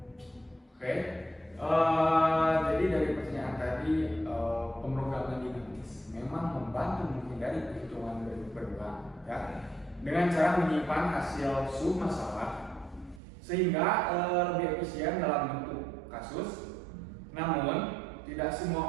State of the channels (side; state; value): left; drops out; at 13.2 s